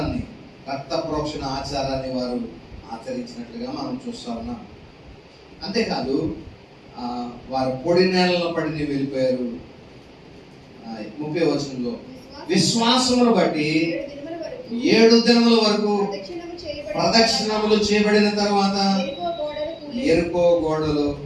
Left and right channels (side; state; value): both; identical; correlation 1.00